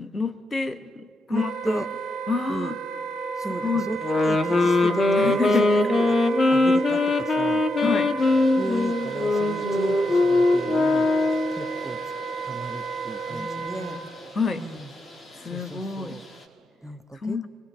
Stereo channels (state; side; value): normal; both; correlation 0.83